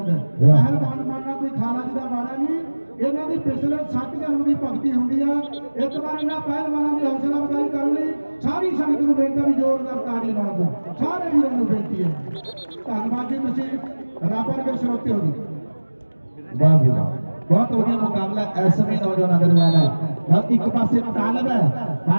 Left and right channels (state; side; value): inverted; both; correlation -1.00